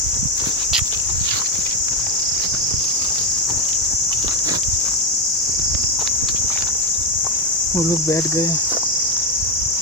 वो लोग बैठ गए,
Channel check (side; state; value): both; normal; correlation 0.08